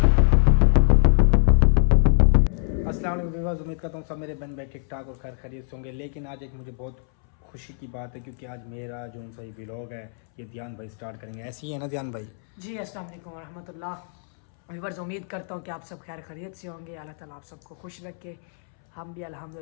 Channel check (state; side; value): silent; right; 62 dB below the other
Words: अस्सलाम वालेकुम, उम्मीद करता हूँ सब मेरे बहन भाई ठीक ठाक और खैर खैरियत से होंगे। लेकिन आज एक मुझे बहुत खुशी की बात है क्योंकि आज मेरा जो उनसा ये व्लॉग है ये ध्यान भाई स्टार्ट करेंगे। ऐसे ही है ना ध्यान भाई? जी अस्सलाम वालेकुम रहमतुल्लाह। व्यूअर्स, उम्मीद करता हूँ कि आप सब खैर खैरियत से होंगे। अल्लाह ताला आप सबको खुश रखे। हम भी